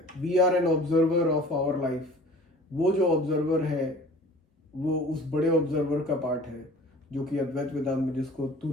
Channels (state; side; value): normal; both; correlation 0.46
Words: We are an observer of our life. वो जो ऑब्जर्वर है वो उस बड़े ऑब्जर्वर का पार्ट है, जो कि अद्वैत वेदांत में जिसको